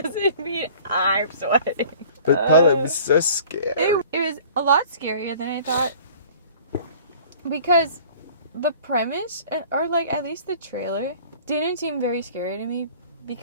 mean I'm sweating. But Paula, it was so scary. It was a lot scarier than I thought. Because the premise, or like at least the trailer, didn't seem very scary to me.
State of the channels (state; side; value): inverted; both; correlation -0.48